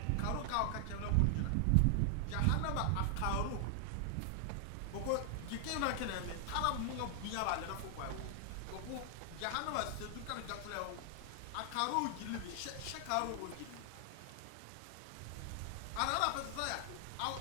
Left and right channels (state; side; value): different; both; correlation 0.00